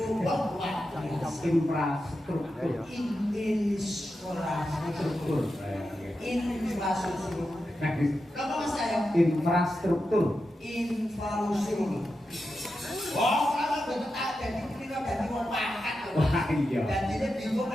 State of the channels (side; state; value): both; normal; correlation 0.89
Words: luar biasa. Infrastruktur. Infrastruktur. Infrastruktur. Apa mas saya? Infrastruktur. Infrastruktur. Oh, kalau betul ada di sini kan jadi mau makan. Wah iya. Dan ini bingung